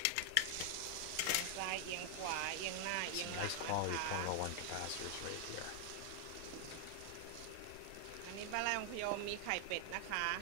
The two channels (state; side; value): different; both; correlation 0.00